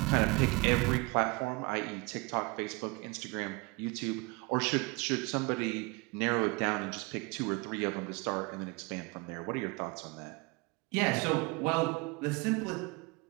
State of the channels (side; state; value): left; quieter; 26.5 dB